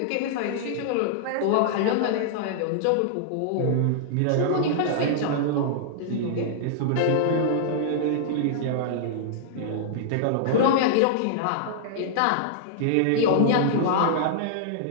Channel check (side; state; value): both; different; correlation -0.01